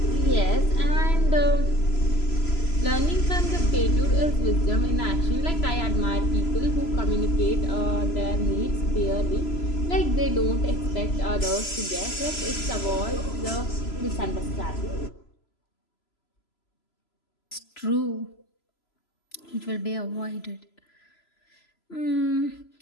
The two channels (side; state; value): right; late; 3.0 ms